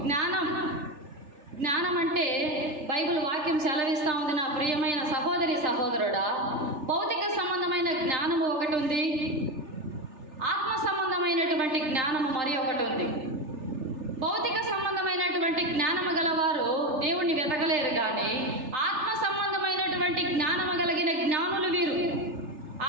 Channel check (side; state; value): left; late; 3.4 ms